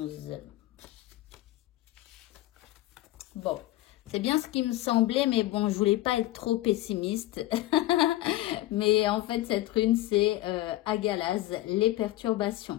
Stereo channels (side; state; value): right; quieter; 16.3 dB